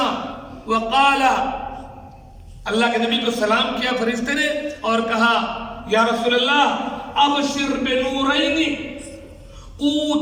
وقال، اللہ کے نبی کو سلام کیا فرشتے نے اور کہا یا رسول اللہ ابشر بنورین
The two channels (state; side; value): identical; both; correlation 1.00